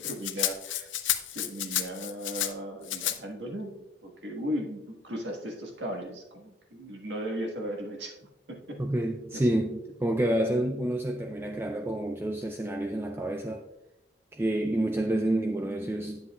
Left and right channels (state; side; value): normal; both; correlation 0.69